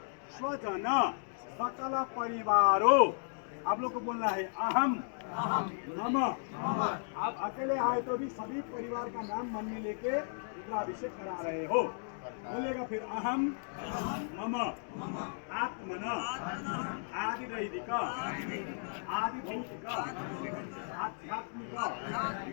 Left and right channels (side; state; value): right; silent; digital silence